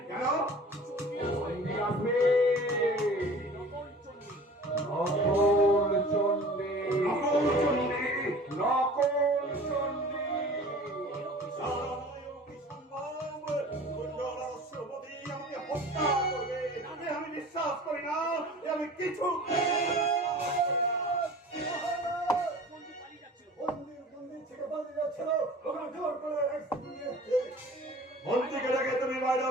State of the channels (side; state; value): both; normal; correlation 0.43